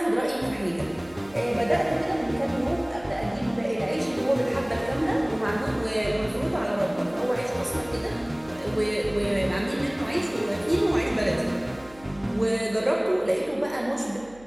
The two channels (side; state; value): right; noise; hum, 23 dB below the sound